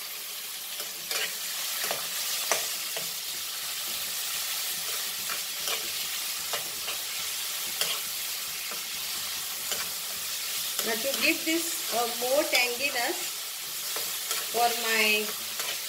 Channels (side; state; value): both; identical; correlation 1.00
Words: Now to give this more tanginess for my